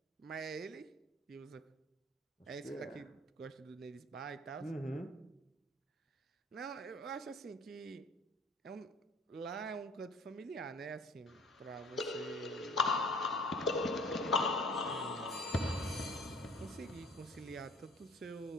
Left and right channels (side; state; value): both; normal; correlation 0.50